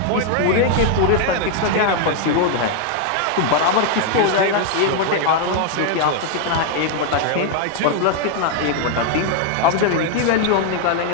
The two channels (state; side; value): different; both; correlation 0.00